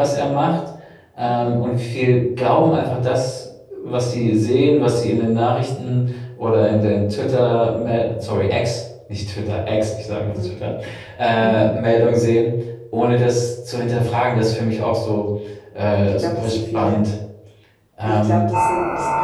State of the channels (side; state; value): both; identical; correlation 1.00